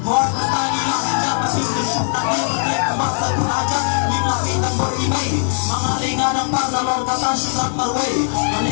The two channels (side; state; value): right; silent; digital silence